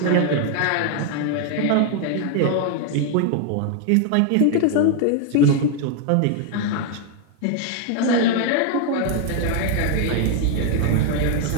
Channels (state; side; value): different; both; correlation 0.00